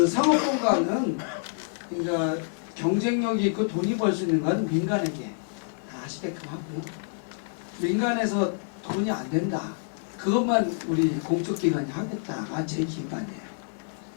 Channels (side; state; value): right; silent; digital silence